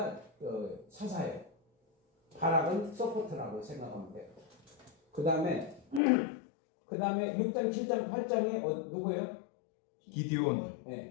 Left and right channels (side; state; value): right; drops out; at 6.0 s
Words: 사사예요. 바락은 서포트라고 생각하면 돼요. 그 다음에 6장, 7장, 8장에 누구예요? 기디온,